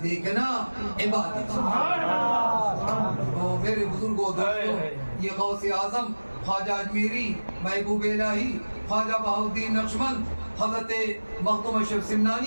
دیکھنا عبادت ہے۔ تو میرے بزرگوں دوستوں یہ غوث اعظم خواجہ اجمیری، محبوب الہی، خواجہ بہاؤالدین نقشبند، حضرت مخدوم اشرف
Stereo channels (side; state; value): both; inverted; correlation -1.00